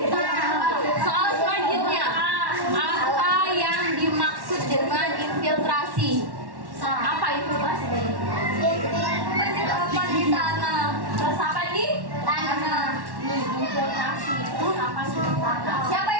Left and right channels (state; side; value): late; left; 1.1 ms